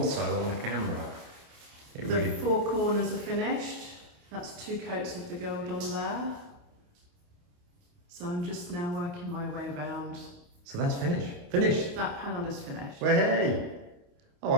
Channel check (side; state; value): left; late; 28 ms